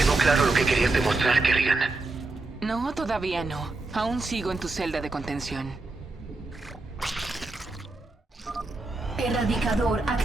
claro lo que querías demostrar, Kerrigan. No, todavía no. Aún sigo en tu celda de contención. Erradicador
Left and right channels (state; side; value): quieter; left; 3.1 dB